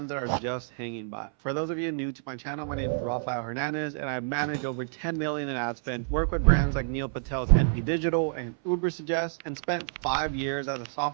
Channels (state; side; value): silent; left; 59 dB below the other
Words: that are just hanging by. For those of you new to my channel, my name is Rafael Hernandez, and I manage over 10 million in ad spend, work with brands like Neil Patel's NP Digital and Uber Suggest, and spent 5 years as a